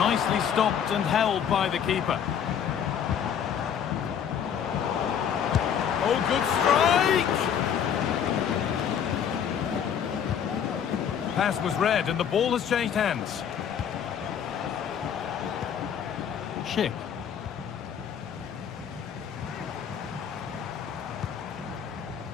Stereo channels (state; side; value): quieter; right; 8.4 dB